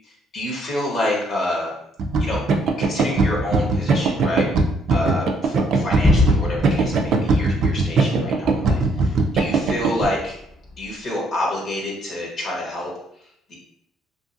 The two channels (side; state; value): both; normal; correlation 0.68